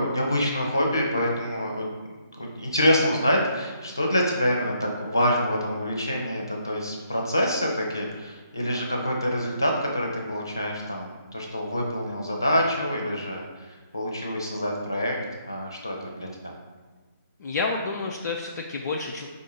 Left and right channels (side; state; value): both; inverted; correlation -0.72